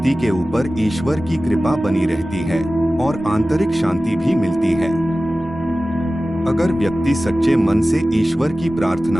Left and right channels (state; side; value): normal; both; correlation 0.96